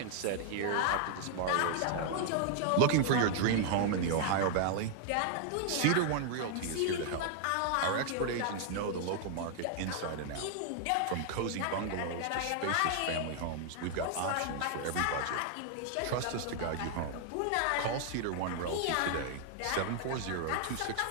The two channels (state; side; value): different; both; correlation 0.00